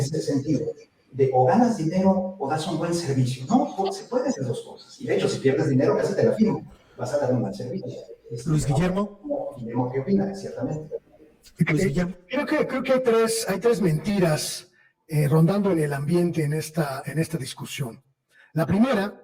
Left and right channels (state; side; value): identical; both; correlation 1.00